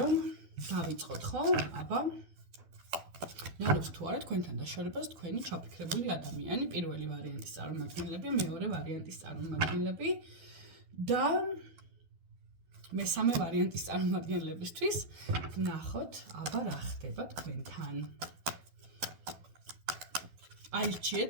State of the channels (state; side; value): late; left; 12 ms